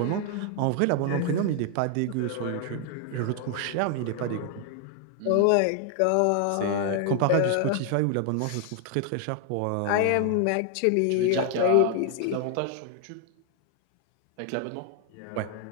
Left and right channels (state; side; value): different; both; correlation 0.00